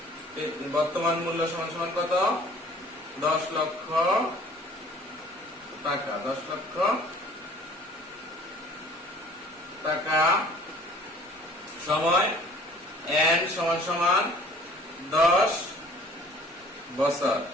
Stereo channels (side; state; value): both; normal; correlation 0.52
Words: বর্তমান মূল্য সমান সমান কত? 10 লক্ষ টাকা। 10 লক্ষ টাকা। সময় এন সমান সমান 10 বছর।